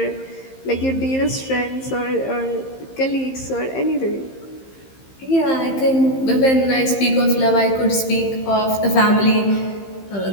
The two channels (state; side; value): late; right; 15 ms